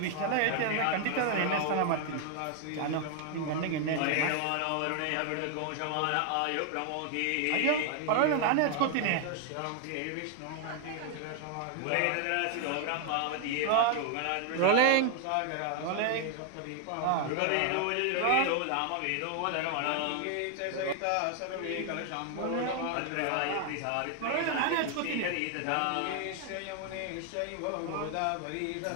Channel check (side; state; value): both; different; correlation 0.00